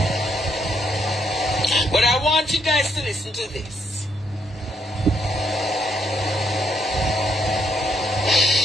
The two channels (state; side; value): normal; both; correlation 0.74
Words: But I want you guys to listen to this.